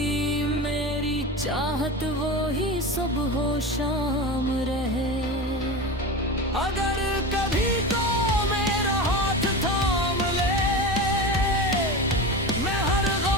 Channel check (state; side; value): normal; both; correlation 0.25